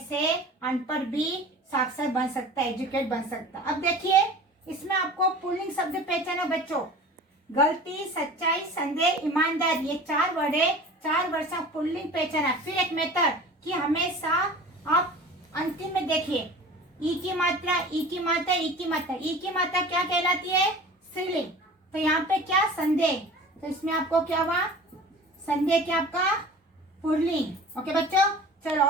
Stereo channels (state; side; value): normal; both; correlation 0.40